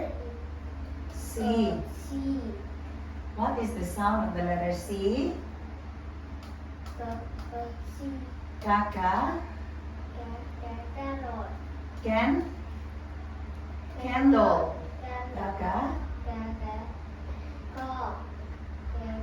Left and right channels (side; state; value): both; identical; correlation 1.00